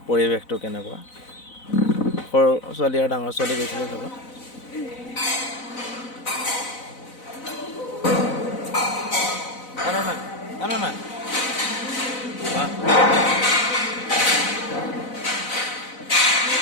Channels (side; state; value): right; late; 4.0 ms